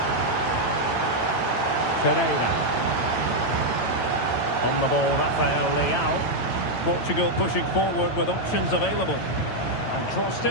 Ferreira. On the ball, Rafael Leao. Portugal pushing forward with options available. And crossed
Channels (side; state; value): right; late; 9.0 ms